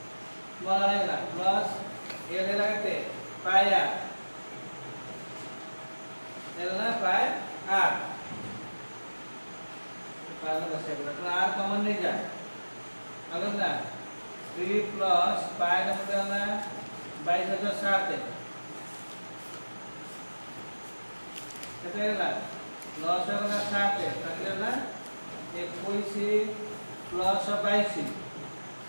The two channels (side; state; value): both; inverted; correlation -1.00